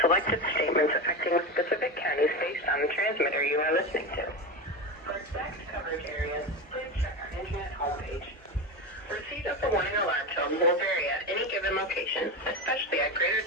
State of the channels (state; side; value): normal; both; correlation 0.20